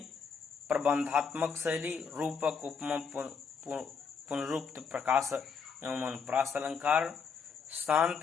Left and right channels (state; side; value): quieter; right; 5.9 dB